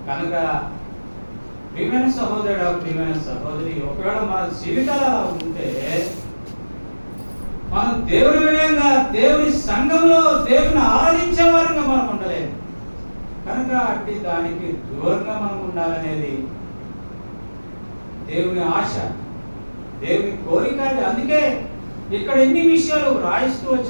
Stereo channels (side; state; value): both; inverted; correlation -1.00